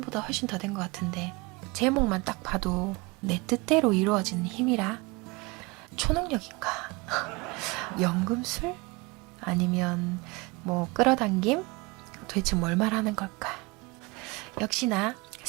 훨씬 더 된 것 같은데 제목만 딱 봐도 내 뜻대로 이루어지는 힘이라 초능력인가? 연금술? 아니면 뭐 끌어당김? 도대체 뭘 말하는 걸까? 역시나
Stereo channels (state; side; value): quieter; left; 25.6 dB